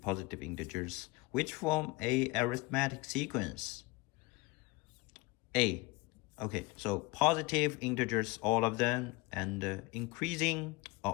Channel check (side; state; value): right; quieter; 23.3 dB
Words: positive integers, which form a arithmetic sequence. A. Okay, so positive integers, all of them, and increasing